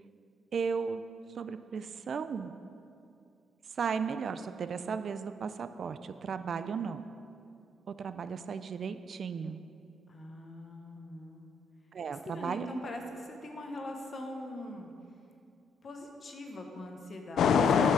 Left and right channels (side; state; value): both; normal; correlation 0.70